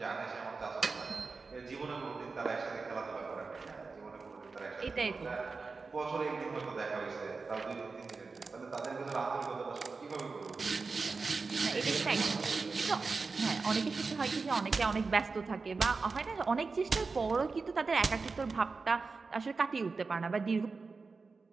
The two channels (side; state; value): left; quieter; 4.3 dB